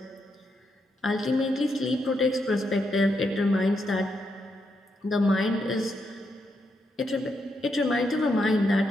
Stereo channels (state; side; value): normal; both; correlation 0.81